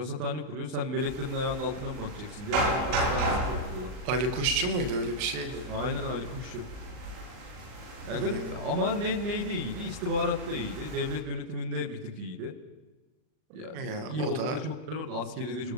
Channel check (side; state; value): left; late; 39 ms